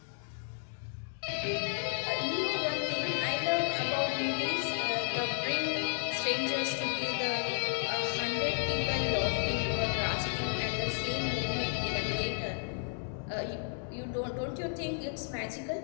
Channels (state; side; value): silent; right; digital silence